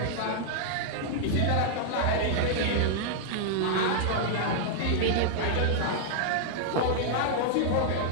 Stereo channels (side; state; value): both; different; correlation -0.01